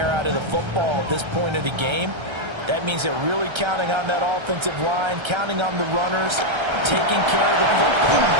out of the football at this point of the game. That means they're really counting on that offensive line, counting on the runners, taking care of the football.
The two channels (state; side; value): late; left; 1.3 ms